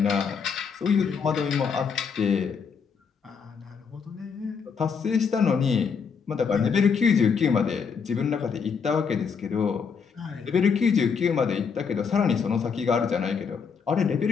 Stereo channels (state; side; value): quieter; right; 6.0 dB